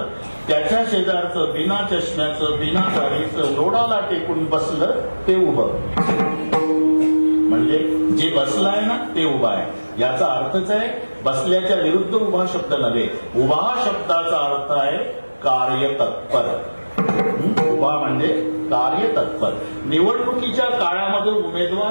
त्याच्या शेजारचं बिना चष्म्याचं बिना दाढीचं लोडाला टेकून बसलं ते उभं. म्हणजे जे बसलं आहे ना ते उभा आहे. याचा अर्थच आहे बसल्याच्या विरुद्ध उभा शब्द नव्हे. उभा शब्दाचा अर्थ आहे कार्यतत्पर. उभा म्हणजे कार्यतत्पर. निवडणुकीच्या काळामध्ये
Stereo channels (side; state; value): both; inverted; correlation -1.00